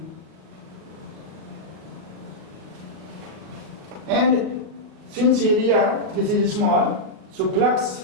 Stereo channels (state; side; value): late; left; 38 ms